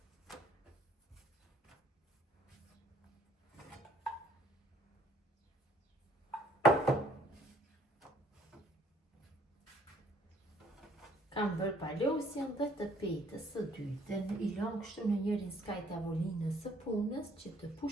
Kam bërë palosjen dhe të petës së dytë, i lëm kështu në njërin skaj tavolinës së punës që të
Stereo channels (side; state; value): both; normal; correlation 0.62